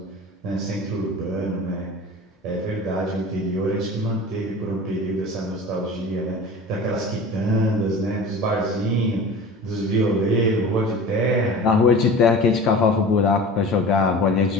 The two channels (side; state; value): both; normal; correlation 0.37